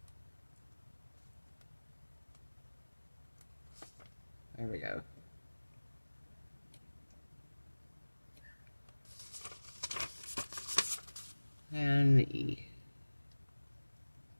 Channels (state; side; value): inverted; both; correlation -1.00